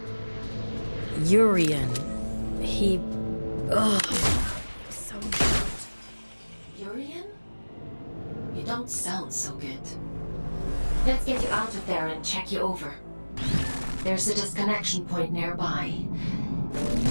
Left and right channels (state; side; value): inverted; both; correlation -1.00